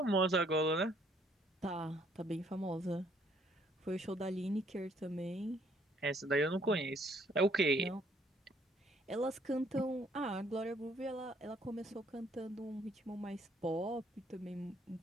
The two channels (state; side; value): normal; both; correlation 0.65